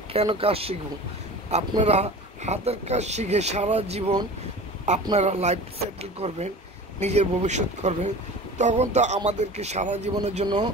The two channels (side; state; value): both; normal; correlation 0.37